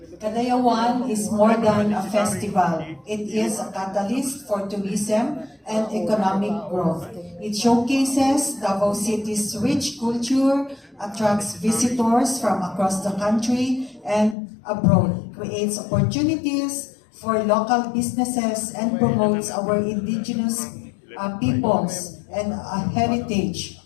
Kadayawan is more than a festival. It is a catalyst for tourism and economic growth. It showcases Davao City's rich culture, attracts visitors from across the country and abroad, creates opportunities for local businesses, and promotes our indigenous peoples and heritage.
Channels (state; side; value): drops out; right; at 14.4 s